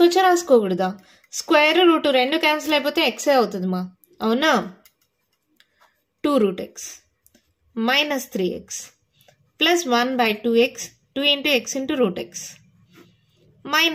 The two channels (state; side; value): identical; both; correlation 1.00